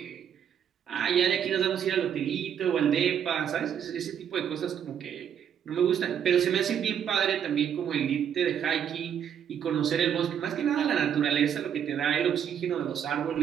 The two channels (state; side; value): quieter; left; 8.7 dB